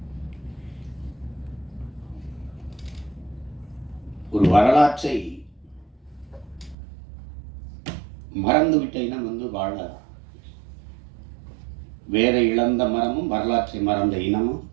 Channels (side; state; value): left; drops out; at 6.8 s